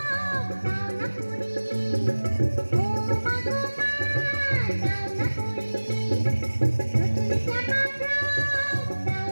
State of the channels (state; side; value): inverted; both; correlation -1.00